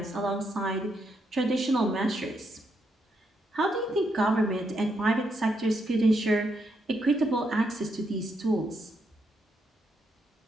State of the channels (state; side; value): normal; both; correlation 0.79